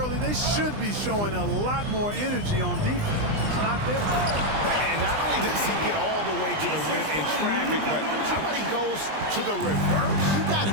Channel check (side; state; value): left; late; 20 ms